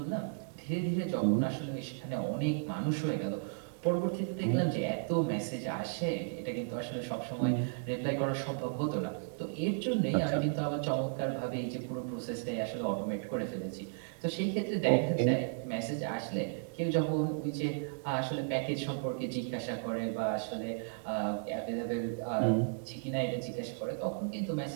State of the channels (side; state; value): left; silent; digital silence